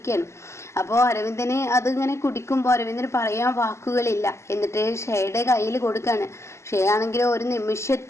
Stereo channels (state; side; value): late; right; 0.13 ms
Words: അപ്പോൾ അരവിന്ദന് അതിങ്ങനെ കുടിക്കുമ്പോൾ അരവിന്ദന് പറയാൻ വാക്കുകളില്ല. എന്നിട്ട് ഷേയുടെ കയ്യിൽ കൊടുക്കുകയാണ്. ഷേ ആണെങ്കിലും ഒരു